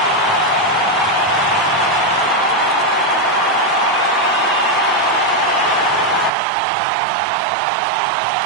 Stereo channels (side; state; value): left; drops out; at 6.3 s